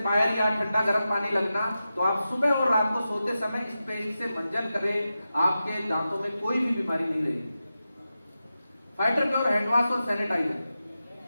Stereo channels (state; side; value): inverted; both; correlation -0.92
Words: पायल या ठंडा गर्म पानी लगना, तो आप सुबह और रात को सोते समय इस पेस्ट से मंजन करें, आपके दांतों में कोई भी बीमारी नहीं रहेगी। फाइटर प्योर हैंड वॉश और सैनिटाइजर।